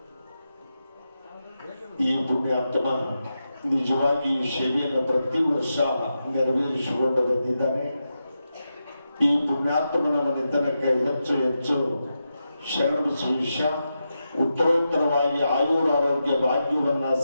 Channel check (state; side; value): inverted; both; correlation -0.88